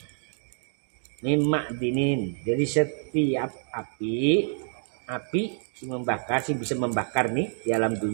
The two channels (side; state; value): left; silent; digital silence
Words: jadi setiap api sing membakar, sing bisa membakar nih di alam